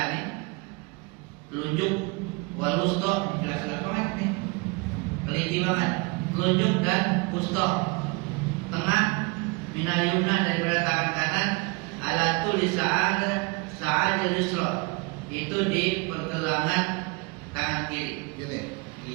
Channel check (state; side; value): quieter; left; 28.0 dB